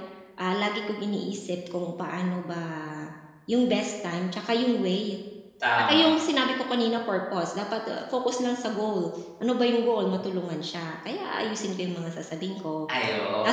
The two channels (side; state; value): both; identical; correlation 1.00